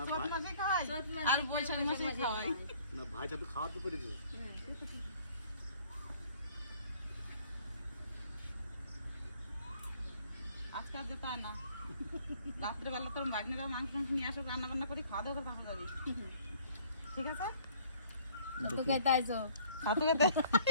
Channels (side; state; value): both; inverted; correlation -0.57